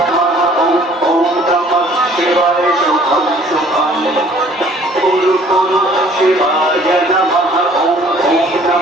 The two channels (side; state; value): both; normal; correlation 0.55